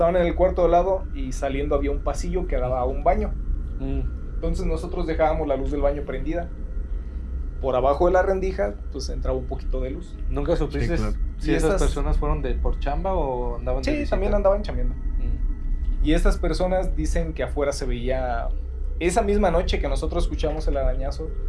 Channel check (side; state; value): both; identical; correlation 1.00